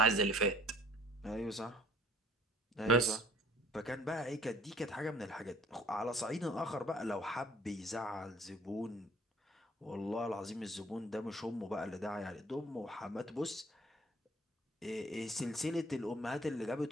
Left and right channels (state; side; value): normal; both; correlation 0.55